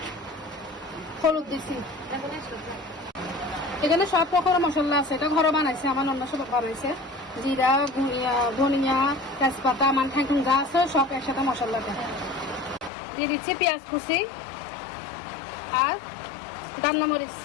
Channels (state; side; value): drops out; right; at 12.9 s